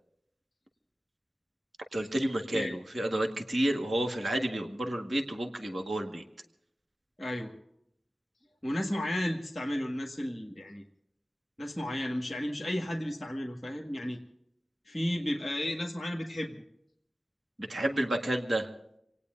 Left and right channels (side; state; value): both; normal; correlation 0.95